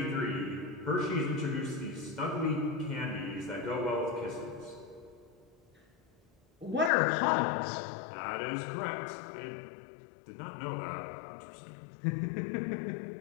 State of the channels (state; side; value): drops out; right; at 6.9 s